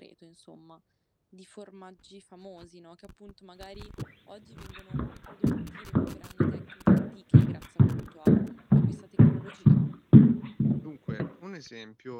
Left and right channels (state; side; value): identical; both; correlation 1.00